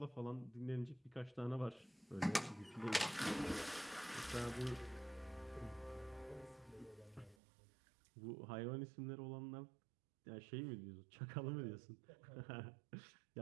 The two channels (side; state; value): left; drops out; at 7.4 s